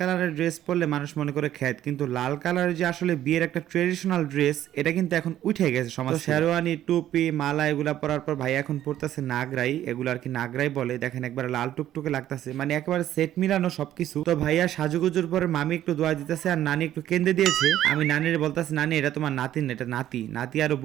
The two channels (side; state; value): left; quieter; 12.3 dB